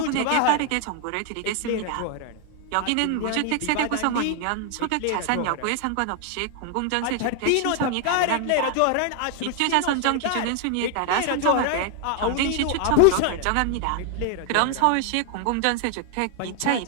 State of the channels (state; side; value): different; both; correlation 0.00